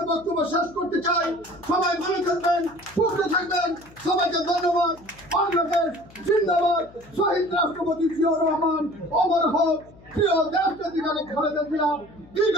বক্তব্য শেষ করতে চাই। সবাই ভালো থাকবেন, সুস্থ থাকবেন, সবাইকে ধন্যবাদ। বাংলাদেশ জিন্দাবাদ। শহীদ রাষ্ট্রপতি জিয়াউর রহমান অমর হোক, প্রিয় দেশনেত্রী খালেদা জিয়া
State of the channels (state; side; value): noise; left; hum, 24 dB below the sound